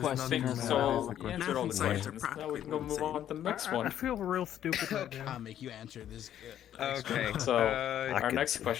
as So well. you answered all the Math and science are questions. Now we practically can go move the on to the next I one. feel real stupid right now. Comic, you answered this. Okay. So I our could- next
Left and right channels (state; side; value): quieter; right; 10.9 dB